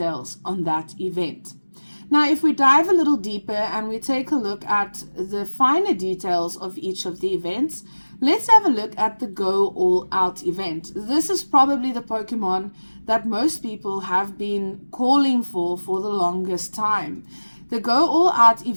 on that event. Now, if we dive a little deeper and we take a look at the finer details of each of the events, let's have a look at the Go All Out event. This is probably the Pokemon that most people have been calling for the longest time. The Go All Out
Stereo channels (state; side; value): inverted; both; correlation -1.00